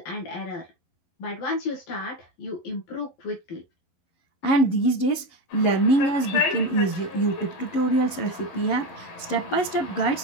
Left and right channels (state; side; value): late; right; 11 ms